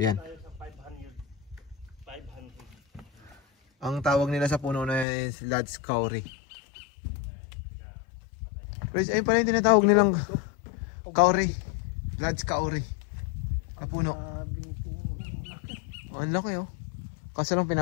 Ang tawag nila sa puno na is Lad's Kauri. Guys, ayun pala yung tinatawag nilang kauri. Lad's Kauri. Na puno. Oh, ang laki oh. Kasi lang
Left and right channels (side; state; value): right; drops out; at 5.1 s